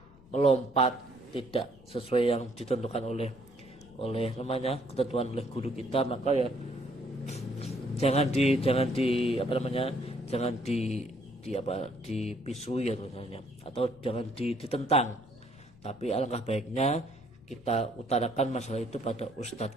melompat tidak sesuai yang ditentukan oleh namanya ketentuan oleh guru kita maka ya jangan dipisui ya misalnya atau jangan ditentang, tapi alangkah baiknya kita utarakan masalah itu pada ustadz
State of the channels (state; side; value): noise; left; rumble, 24 dB below the sound